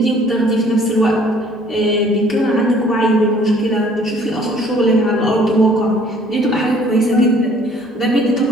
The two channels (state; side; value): normal; both; correlation 0.57